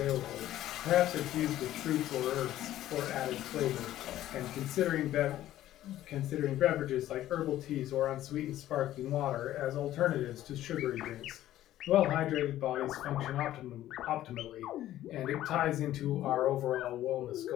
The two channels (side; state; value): right; quieter; 13.5 dB